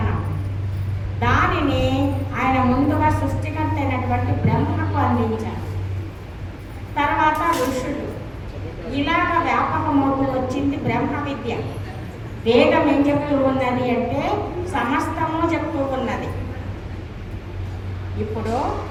దానిని ఆయన ముందుగా సృష్టికర్త అయినటువంటి బ్రహ్మకు అందించారు. తర్వాత ఋషులు ఇలాగ వ్యాపకమవుతూ వచ్చింది బ్రహ్మ విద్య. వేదం ఏం చెప్తూ ఉన్నది అంటే సమస్తము చెప్తూ ఉన్నది. ఇప్పుడు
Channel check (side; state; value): both; identical; correlation 1.00